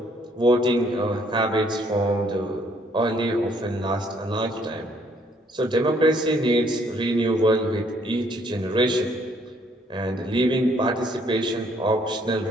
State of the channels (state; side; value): normal; both; correlation 0.65